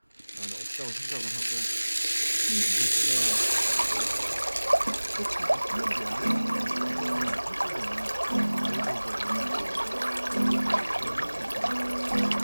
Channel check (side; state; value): both; inverted; correlation -1.00